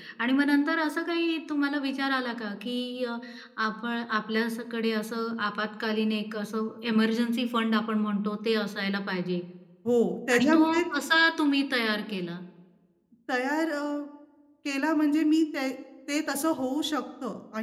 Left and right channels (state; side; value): identical; both; correlation 1.00